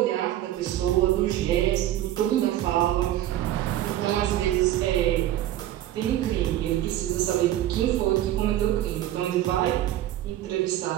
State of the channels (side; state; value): left; quieter; 13.2 dB